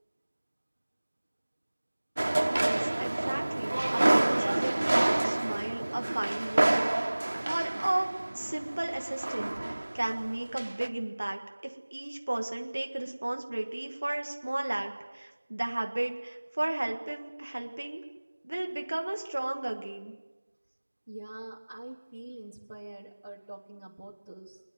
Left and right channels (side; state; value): both; inverted; correlation -1.00